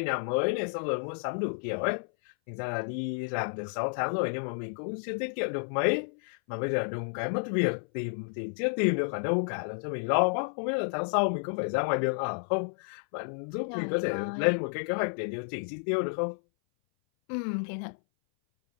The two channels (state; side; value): silent; right; 57 dB below the other